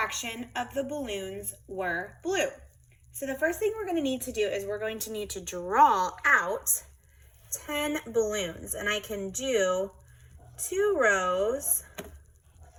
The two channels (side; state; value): both; identical; correlation 1.00